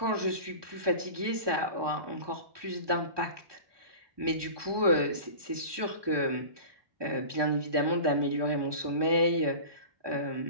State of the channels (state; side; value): late; left; 1.2 ms